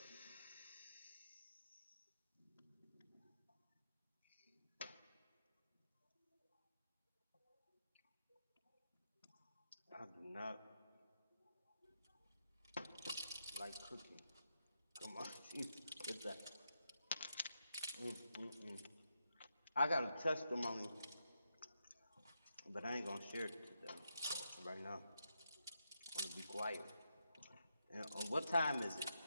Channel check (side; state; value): both; inverted; correlation -0.84